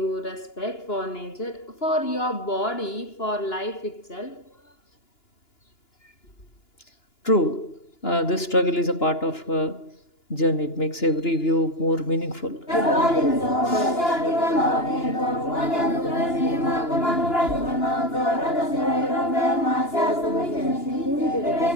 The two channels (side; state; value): right; late; 2.9 ms